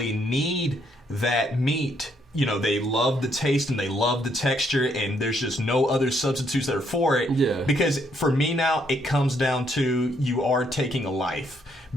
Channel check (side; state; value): both; normal; correlation 0.72